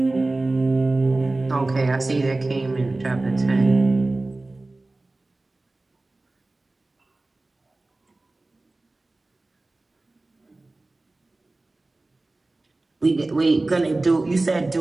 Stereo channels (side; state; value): left; quieter; 3.0 dB